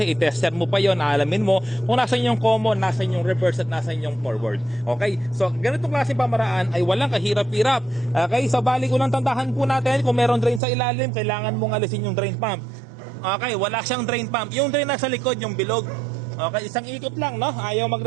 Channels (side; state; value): left; drops out; at 10.6 s